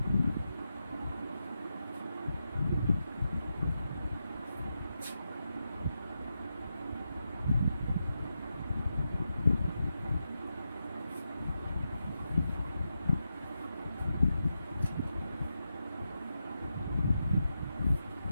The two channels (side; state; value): both; inverted; correlation -0.87